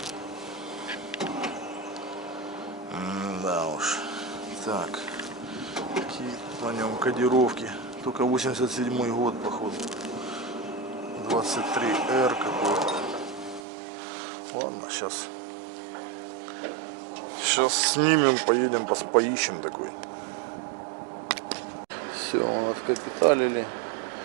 Да уж. Так. Какие на нем кодировки. Только 87-й год, походу. 23R какой-то. Ладно, сейчас снимем, поедем, поищем такой. Все, откапиталили,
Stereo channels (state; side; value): drops out; left; at 13.6 s